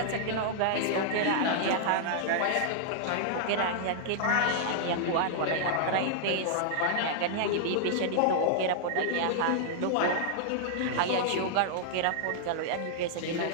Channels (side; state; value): both; different; correlation -0.01